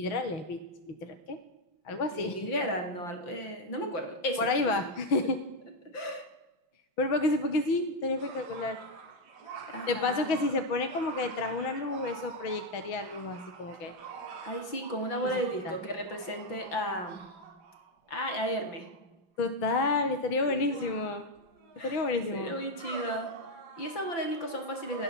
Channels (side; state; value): right; late; 5.9 ms